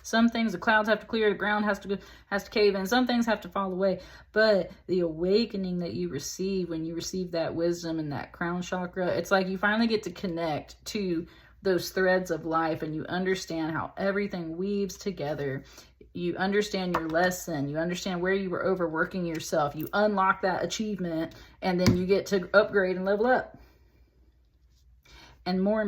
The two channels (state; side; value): identical; both; correlation 1.00